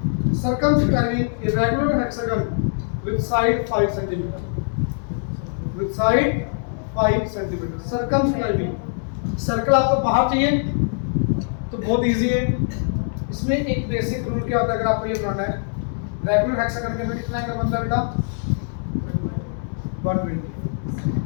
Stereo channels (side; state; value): right; silent; digital silence